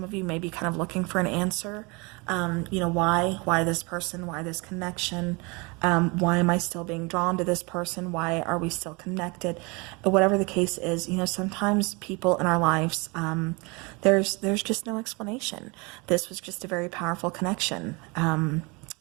of you may be kind of looking for an answer, you know, why this person, why this connection, why am I still being drawn to this person, why are we still connected, whatever the case is, you know, sometimes people in our lives, there's just no explanation. This was just a very powerful connection.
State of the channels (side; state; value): left; quieter; 28.1 dB